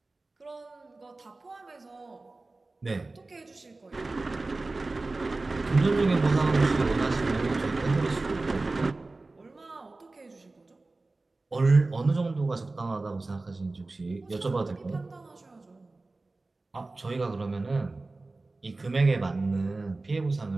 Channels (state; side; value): quieter; left; 3.3 dB